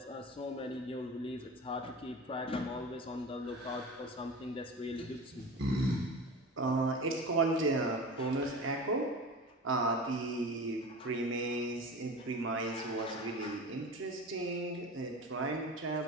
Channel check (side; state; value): both; normal; correlation 0.32